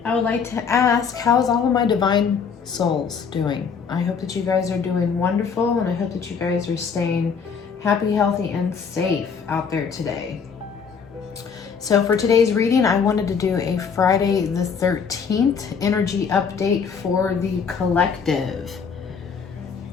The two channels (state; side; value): quieter; right; 6.2 dB